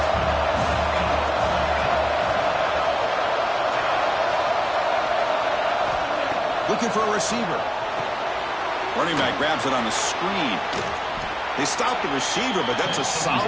Looking for a receiver. Running back grabs it on the screen. They stop the receiver, but that's a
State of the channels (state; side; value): identical; both; correlation 1.00